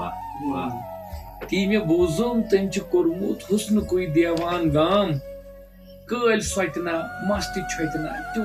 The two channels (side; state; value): both; identical; correlation 1.00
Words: تی مےٚ بوٗزُم تٔمۍ چھُ کوٚرمُت حُسنُکُے دیوان گام کٲلۍ سۄتہِ نا مستہِ چھۄتہِ نا